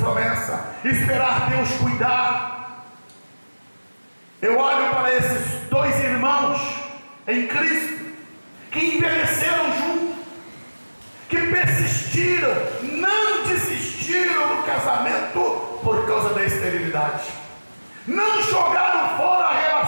esperar Deus cuidar. Eu olho para esses dois irmãos em Cristo, que envelheceram juntos, que persistiram, não desistiram do casamento por causa da esterilidade, não jogaram fora a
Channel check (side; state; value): both; inverted; correlation -1.00